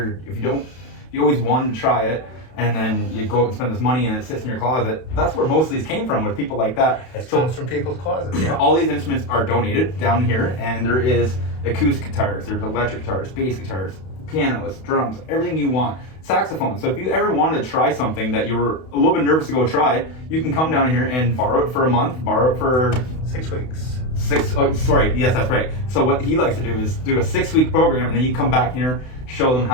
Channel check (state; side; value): late; right; 32 ms